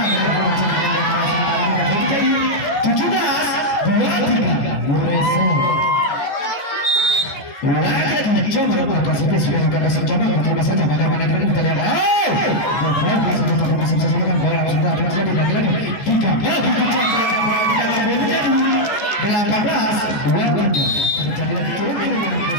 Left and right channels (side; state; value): right; late; 14 ms